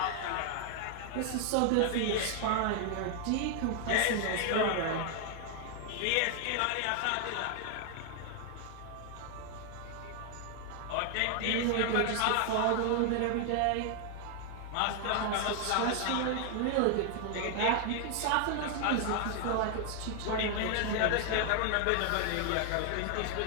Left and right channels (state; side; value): different; both; correlation 0.00